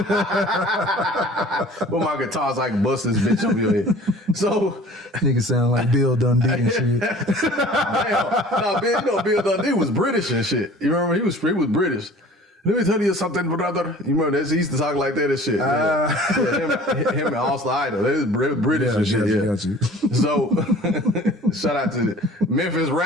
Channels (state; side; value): normal; both; correlation 0.47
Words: With my guitars, I can bust this bitch over your head. So Nigga sound like Bill Dundee and shit. Damn. No, Bill Dundee was British and shit. You remember? He was British. Let me tell you something, brother. You remember that? He used to talk like that and shit. Him and Oscar Idol. They was British and shit. Got you. So, shout out to Memphis